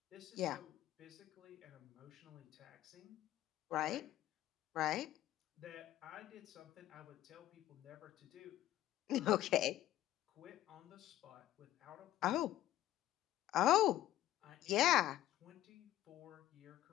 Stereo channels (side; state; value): right; quieter; 13.9 dB